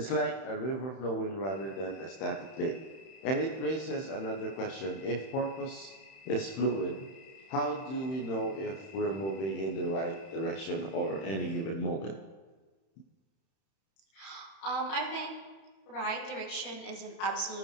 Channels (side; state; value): right; late; 31 ms